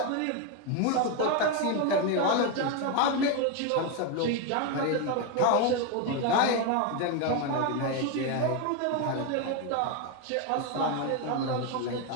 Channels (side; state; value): both; different; correlation 0.02